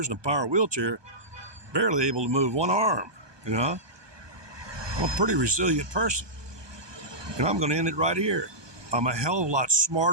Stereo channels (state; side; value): late; left; 1.2 ms